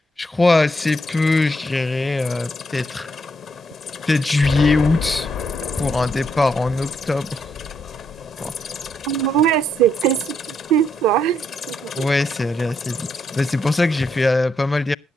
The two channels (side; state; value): both; normal; correlation 0.76